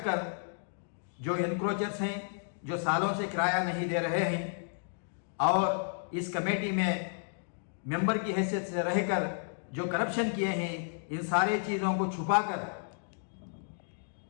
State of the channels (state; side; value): silent; right; digital silence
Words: कर जो एनक्रोचर्स हैं, जो सालों से किराया नहीं दे रहे हैं और इस कमेटी में मेंबर की हैसियत से रहकर जो करप्शन किए हैं, इन सारी चीज़ों को छुपाकर